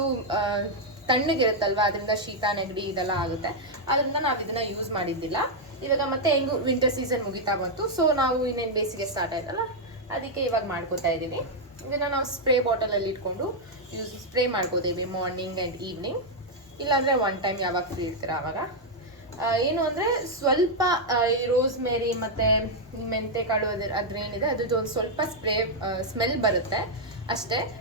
ತಣ್ಣಗಿರುತ್ತಲ್ವ, ಅದರಿಂದ ಶೀತ ನೆಗಡಿ ಇದೆಲ್ಲ ಆಗುತ್ತೆ. ಅದರಿಂದ ನಾವು ಇದನ್ನ ಯೂಸ್ ಮಾಡಿದ್ದಿಲ್ಲ. ಇವಾಗ ಮತ್ತೆ ಹೆಂಗು ವಿಂಟರ್ ಸೀಸನ್ ಮುಗಿತಾ ಬಂತು. ಸೊ ನಾವು ಇನ್ನೇನು ಬೇಸಿಗೆ ಸ್ಟಾರ್ಟ್ ಆಯ್ತಲ್ಲ, ಅದಕ್ಕೆ ಇವಾಗ ಮಾಡ್ಕೋತಾ ಇದ್ದೀವಿ. ಇದನ್ನು ನಾವು ಸ್ಪ್ರೇ ಬಾಟಲಲ್ಲಿ ಇಟ್ಕೊಂಡು ಸ್ಪ್ರೇ ಮಾಡ್ಕೋತೀವಿ ಮಾರ್ನಿಂಗ್ ಆ್ಯಂಡ್ ಈವ್ನಿಂಗ್. ಇಲ್ಲಾಂದರೆ ಒನ್ ಟೈಮ್ ಯಾವಾಗ ಫ್ರೀ ಇರ್ತೀರ ಆವಾಗ. ಏನು ಅಂದರೆ ಸ್ವಲ್ಪ ಈ ರೋಸ್ಮೇರಿ ಮತ್ತು ಮೆಂತೆಕಾಳು ಅದ್ರೇನಿದೆ ಅದ್ರದ್ದು ಒಂದು ಸ್ವಲ್ಪ ಸ್ಮೆಲ್ ಬರುತ್ತೆ ಅಷ್ಟೇ.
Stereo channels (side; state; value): both; normal; correlation -0.02